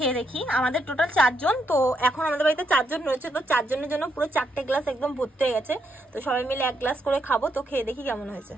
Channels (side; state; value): both; normal; correlation 0.78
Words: দেখি। আমাদের টোটাল 4 জন, তো এখন আমাদের বাড়িতে 4 জন রয়েছে, তো 4 জনের জন্য পুরো 4টে গ্লাস একদম ভর্তি হয়ে গেছে। তো সবাই মিলে 1 গ্লাস করে খাবো। তো খেয়ে দেখি কেমন হয়েছে।